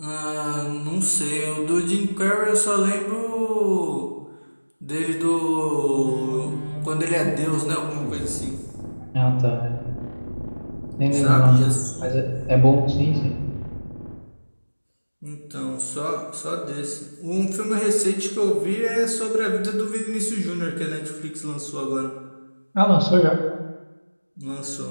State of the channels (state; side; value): inverted; both; correlation -1.00